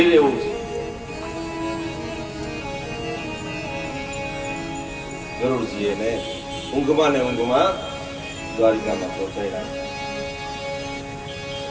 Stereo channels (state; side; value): identical; both; correlation 1.00